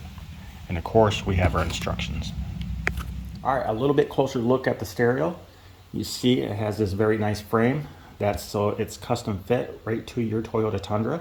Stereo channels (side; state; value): both; identical; correlation 1.00